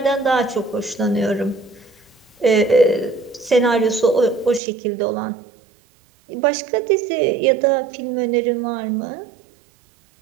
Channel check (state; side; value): drops out; left; at 4.6 s